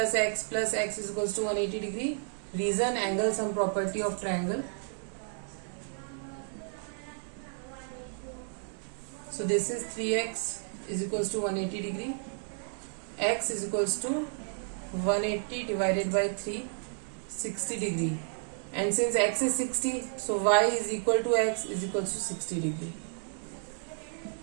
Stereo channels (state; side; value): silent; left; 57 dB below the other